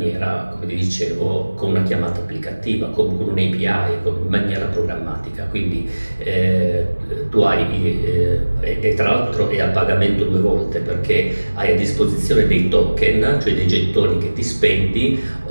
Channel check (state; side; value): inverted; both; correlation -1.00